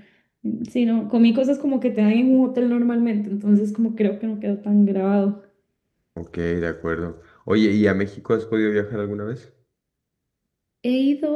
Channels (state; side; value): identical; both; correlation 1.00